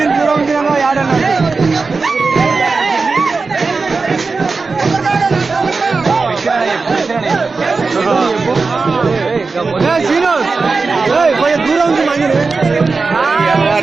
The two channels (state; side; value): quieter; left; 4.2 dB